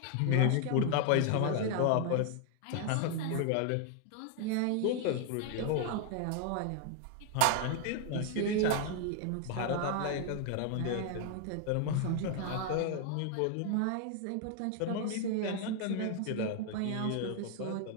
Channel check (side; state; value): both; different; correlation 0.00